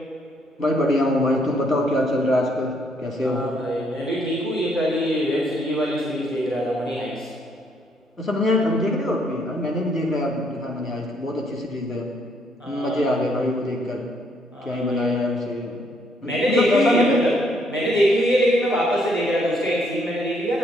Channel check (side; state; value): both; normal; correlation 0.70